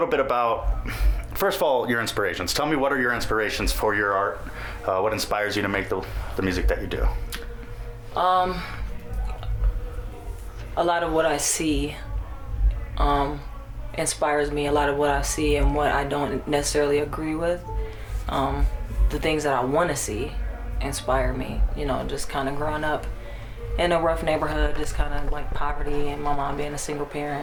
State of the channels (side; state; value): both; identical; correlation 1.00